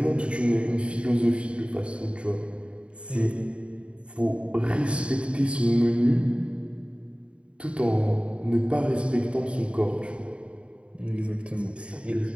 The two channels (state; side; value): late; left; 0.058 ms